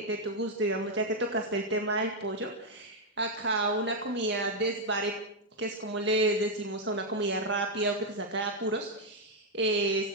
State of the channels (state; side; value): normal; both; correlation 0.00